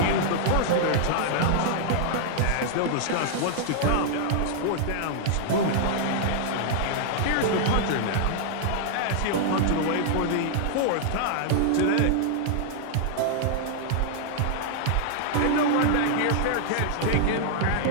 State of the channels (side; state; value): both; different; correlation -0.01